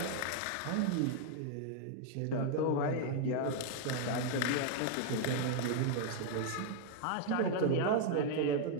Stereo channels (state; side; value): different; both; correlation 0.00